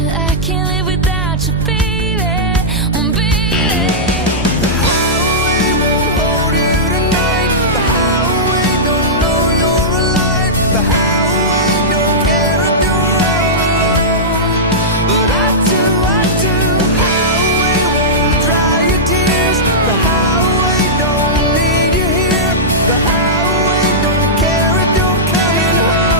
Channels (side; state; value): both; normal; correlation -0.13